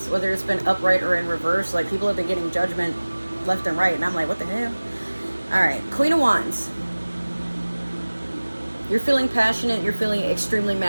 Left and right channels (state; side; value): inverted; both; correlation -1.00